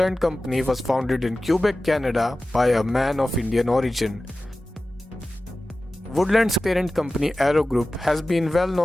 company was founded in Quebec, Canada by a man of Indian origin. Woodland's parent company Aero Group has been well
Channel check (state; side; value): normal; both; correlation 0.96